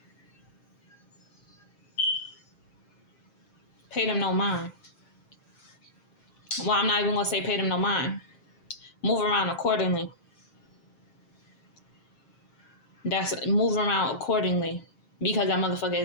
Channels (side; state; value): right; late; 7.5 ms